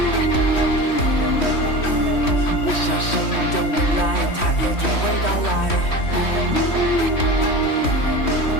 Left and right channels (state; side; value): late; right; 3.1 ms